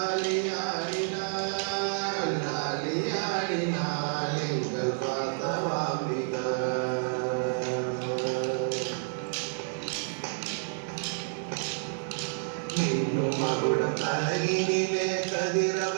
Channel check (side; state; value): left; silent; 56 dB below the other